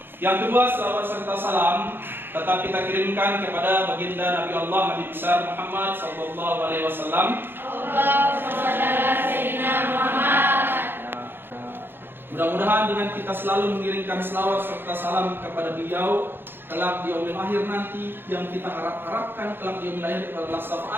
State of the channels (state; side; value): late; left; 0.10 ms